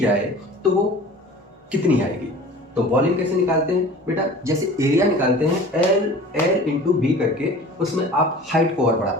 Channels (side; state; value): both; normal; correlation 0.42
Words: तो वो कितनी आएगी। तो वॉल्यूम कैसे निकालते हैं बेटा, जैसे एरिया निकालते हैं L इंटू बी करके, उसमें आप हाइट को और बढ़ा